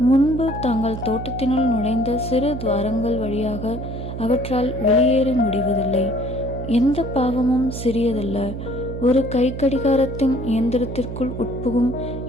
முன்பு தாங்கள் தோட்டத்தினுள் நுழைந்த சிறு துவாரங்கள் வழியாக அவற்றால் வெளியேற முடிவதில்லை. எந்த பாவமும் சிறியதல்ல. ஒரு கை கடிகாரத்தின் இயந்திரத்திற்குள் உட்புகும்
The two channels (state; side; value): noise; right; hum, 7 dB below the sound